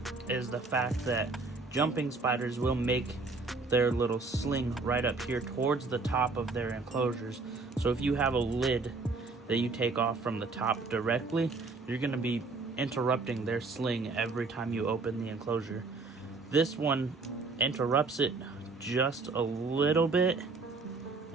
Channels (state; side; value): quieter; left; 3.8 dB